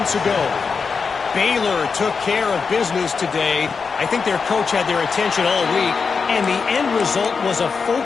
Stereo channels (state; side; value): quieter; right; 5.3 dB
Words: ago. Baylor took care of business today. I think their coach had their attention all week, and the end result was a